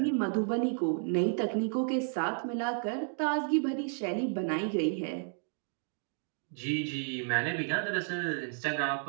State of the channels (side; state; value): left; silent; 56 dB below the other